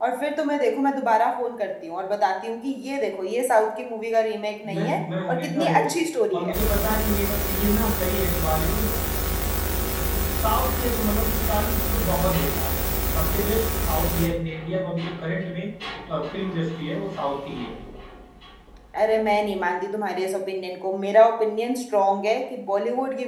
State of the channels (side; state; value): both; identical; correlation 1.00